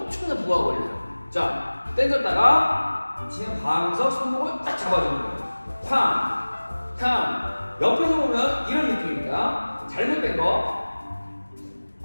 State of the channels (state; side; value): inverted; both; correlation -1.00